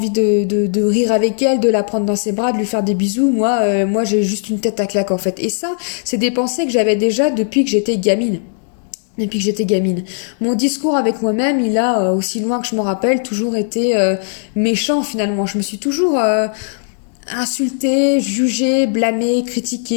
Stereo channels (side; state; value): right; silent; digital silence